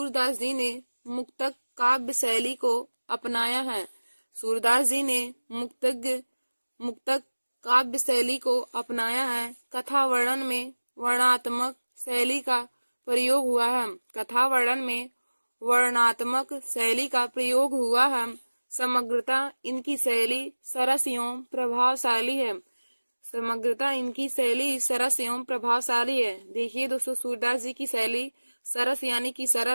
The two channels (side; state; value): both; inverted; correlation -1.00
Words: जी ने मुक्तक काव्य शैली को अपनाया है। सूरदास जी ने मुक्तक काव्य शैली को अपनाया है। कथा वर्णन में वर्णात्मक शैली का प्रयोग हुआ है। कथा वर्णन में वर्णात्मक शैली का प्रयोग हुआ है। समग्रता इनकी शैली सरस एवं प्रभावशाली है। समग्रता इनकी शैली सरस एवं प्रभावशाली है। देखिए दोस्तों, सूरदास जी की शैली सरस यानी कि